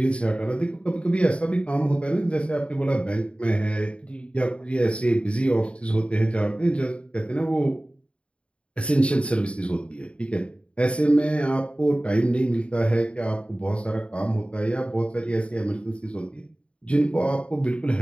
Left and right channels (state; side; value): late; right; 0.060 ms